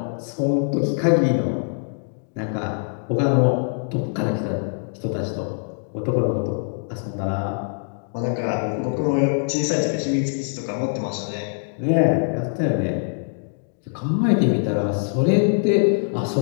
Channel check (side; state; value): right; silent; digital silence